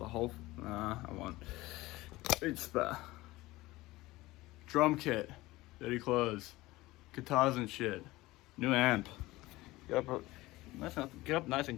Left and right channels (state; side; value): quieter; right; 19.1 dB